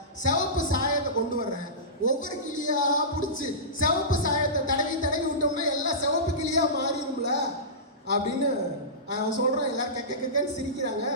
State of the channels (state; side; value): normal; both; correlation -0.20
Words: சிவப்பு சாயத்தை கொண்டு வர்றேன். ஒவ்வொரு கிளியா பிடிச்சி சிவப்பு சாயத்தை தடவி விட்டோம்னா எல்லாம் சிவப்பு கிளியா மாறிடும்ல அப்படின்னு அவன் சொல்றான். எல்லாரும் கெக்கன்னு சிரிக்கிறாங்க.